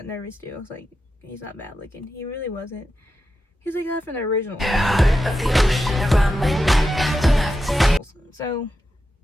nervous, too. I was like, he's not bad looking. He really wasn't. He's like that from the original. So,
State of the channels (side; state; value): both; normal; correlation 0.89